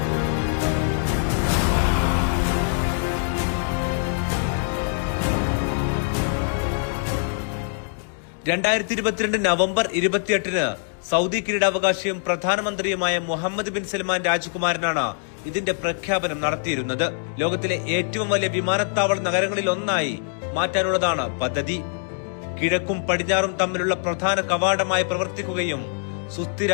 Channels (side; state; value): right; silent; digital silence